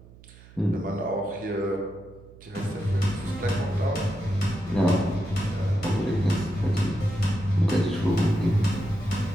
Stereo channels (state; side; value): noise; right; hum, 22 dB below the sound